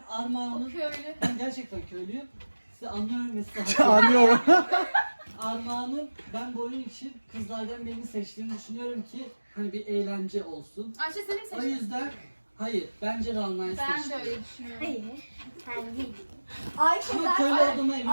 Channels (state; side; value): inverted; both; correlation -1.00